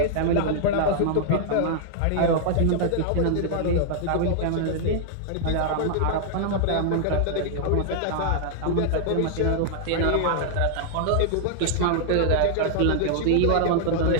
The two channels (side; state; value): both; different; correlation -0.01